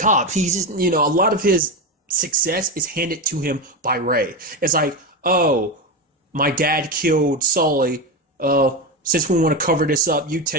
He's just, a lot of his success is handed to him by Ray. It's like, oh, my dad killed Sully. Since we want to cover this up, you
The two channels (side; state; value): both; normal; correlation 0.16